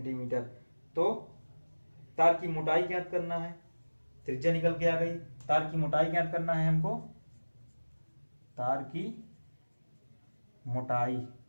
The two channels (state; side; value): inverted; both; correlation -1.00